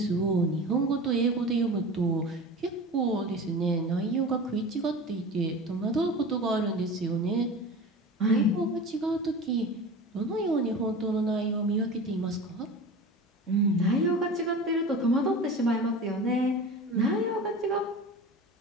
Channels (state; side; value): normal; both; correlation 0.34